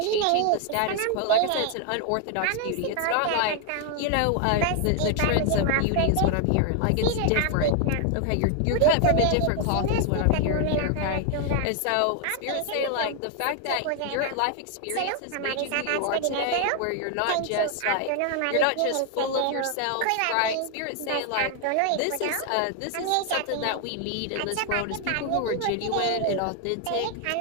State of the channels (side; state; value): both; different; correlation 0.00